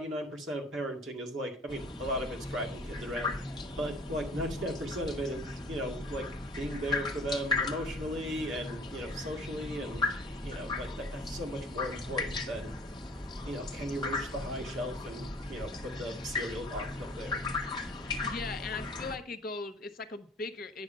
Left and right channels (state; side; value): normal; both; correlation 0.51